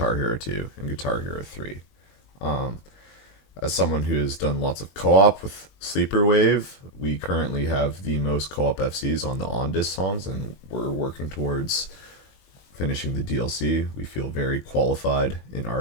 Hero 2 and Guitar Hero 3. Um, as someone who has done lots of co-op with Sleeper Wave, we currently have the most co-op FCs on the on-disc songs, and we're working towards finishing the DLC. We feel very qualified in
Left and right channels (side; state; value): right; late; 21 ms